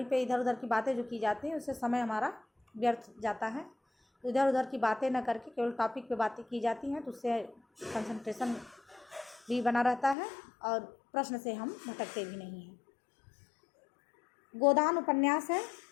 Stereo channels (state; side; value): drops out; right; at 10.2 s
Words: पे इधर उधर की बातें जो की जाती हैं उससे समय हमारा व्यर्थ जाता है। तो इधर उधर की बातें न करके केवल टॉपिक पे बातें की जाती हैं, तो उससे कंसंट्रेशन भी बना रहता है और प्रश्न से हम भटकते भी नहीं हैं। गोदान उपन्यास है